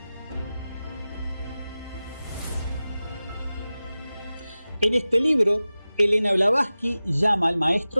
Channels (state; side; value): inverted; both; correlation -0.95